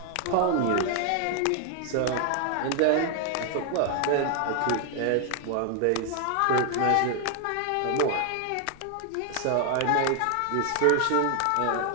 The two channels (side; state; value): both; different; correlation 0.00